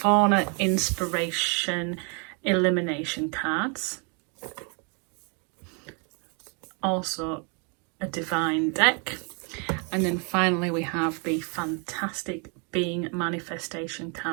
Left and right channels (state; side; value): quieter; left; 36.0 dB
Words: Inspiration Elimination cards. Also a Divine deck. And then finally we have the fantastic Being Manifestation